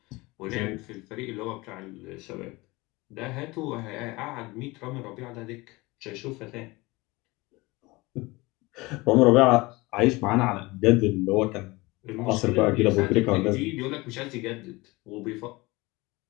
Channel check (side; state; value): right; quieter; 22.6 dB